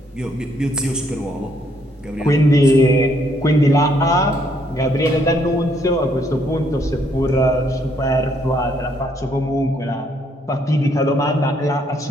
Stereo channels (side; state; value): both; normal; correlation 0.70